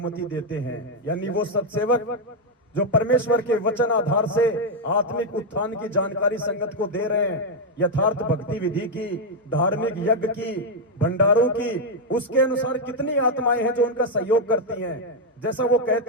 देते हैं, यानी वो सत्सेवक जो परमेश्वर के वचन आधार से आत्मिक उत्थान की जानकारी संगत को दे रहे हैं, यथार्थ भक्ति विधि की, धार्मिक यज्ञ की, भंडारों की, उसके अनुसार कितनी आत्माएं हैं जो उनका सहयोग करती हैं, जैसा वो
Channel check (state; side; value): normal; both; correlation 0.01